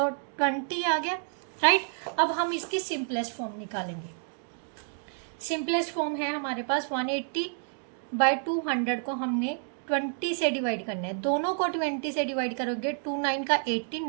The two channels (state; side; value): silent; left; 58 dB below the other